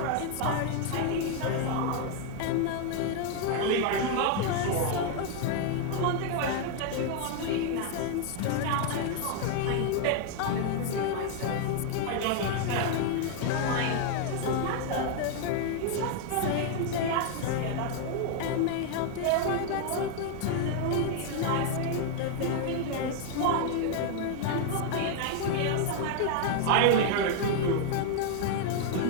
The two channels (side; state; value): both; different; correlation 0.00